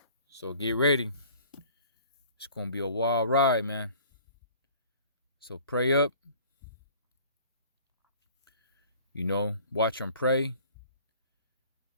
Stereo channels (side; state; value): both; inverted; correlation -0.51